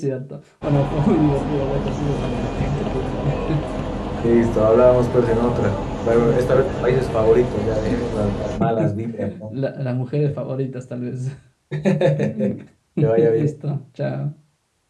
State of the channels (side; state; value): both; identical; correlation 1.00